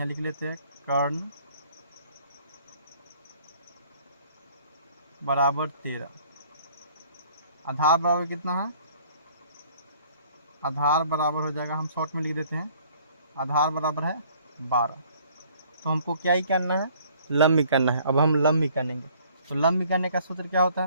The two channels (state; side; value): inverted; both; correlation -0.57